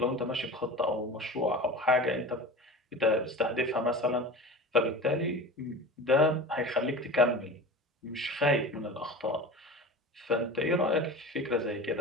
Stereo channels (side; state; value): both; normal; correlation 0.34